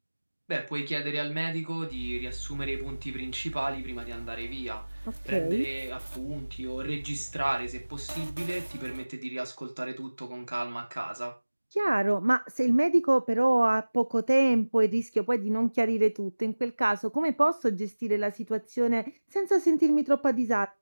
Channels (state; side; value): inverted; both; correlation -1.00